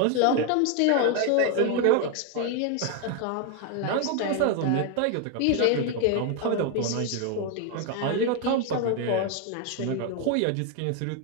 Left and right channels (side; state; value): both; different; correlation 0.01